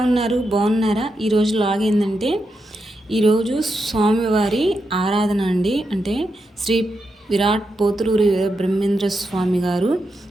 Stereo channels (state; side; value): normal; both; correlation 0.86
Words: ఉన్నారు? బాగున్నారా? ఈరోజు లాగ్ ఏంటంటే ఈరోజు స్వామివారి ఆరాధన అండి. అంటే శ్రీ విరాట్ పోతులూరి బ్రహ్మేంద్ర స్వామి గారు